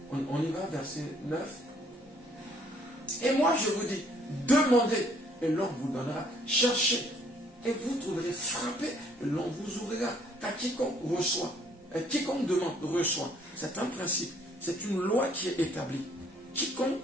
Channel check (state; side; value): normal; both; correlation 0.62